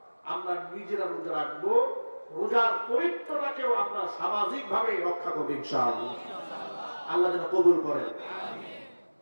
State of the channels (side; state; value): both; inverted; correlation -1.00